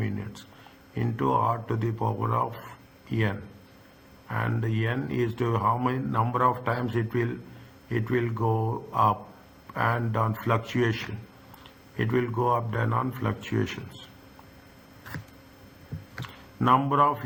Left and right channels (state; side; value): identical; both; correlation 1.00